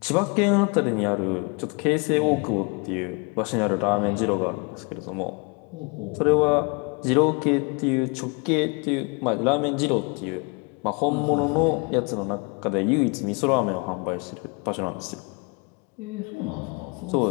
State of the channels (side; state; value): right; quieter; 31.3 dB